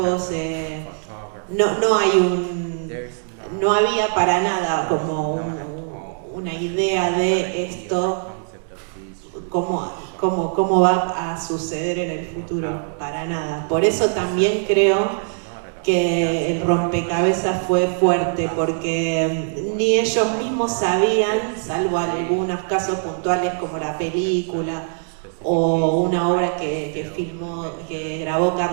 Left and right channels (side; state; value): left; silent; digital silence